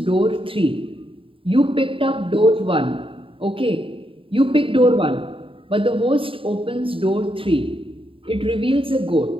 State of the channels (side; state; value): left; late; 0.26 ms